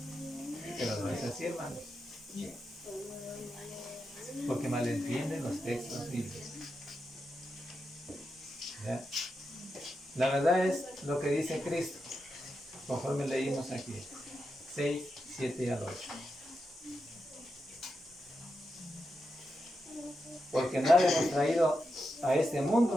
Pero no es así, hermanos. Porque malentienden los textos bíblicos. ¿Ya? La verdad es lo que dice Cristo, conforme leímos aquí, 6, 7 al 8. Porque nada hemos traído a este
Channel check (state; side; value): normal; both; correlation 0.87